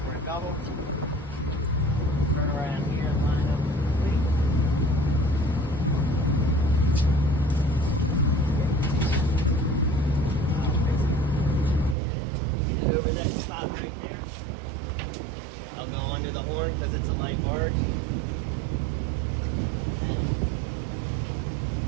a double. Turn around here and line up with the fleet. Get over that spot right there. I'll go under the horn because it's a light barge.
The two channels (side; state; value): left; drops out; at 12.0 s